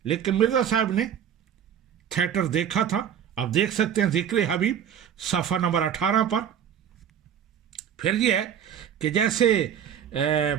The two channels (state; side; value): quieter; left; 9.1 dB